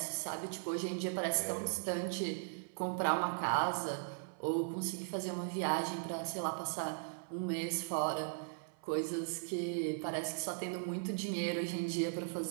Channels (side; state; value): left; silent; 52 dB below the other